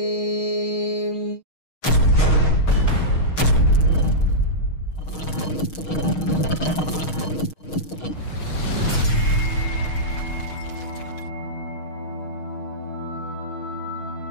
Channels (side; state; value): right; late; 6.4 ms